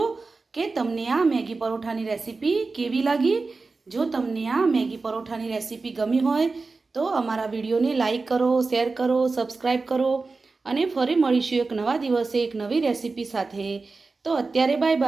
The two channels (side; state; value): left; quieter; 3.9 dB